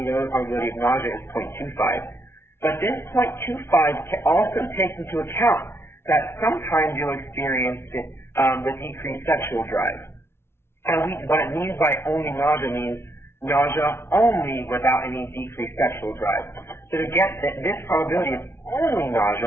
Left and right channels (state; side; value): late; right; 0.12 ms